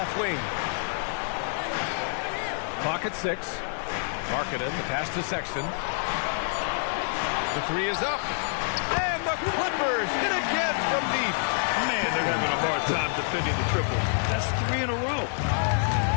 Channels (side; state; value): right; silent; 60 dB below the other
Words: wing. Clock at 6. Markkanen, the pass to Sexton. The three is up. And the Clippers hit again from deep. Man, they're having a hard time defending the triple. That's 3 in a row.